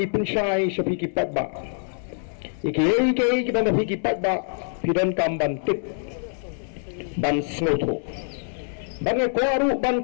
ipunsyai sa pikipat ba iki kibang pikipat ba pidon kamban tip ban snoto bang kwaru ban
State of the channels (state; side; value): silent; right; 62 dB below the other